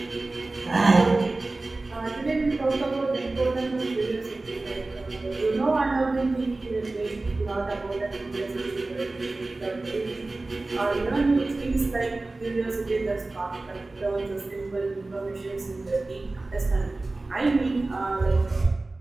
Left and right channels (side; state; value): left; quieter; 3.2 dB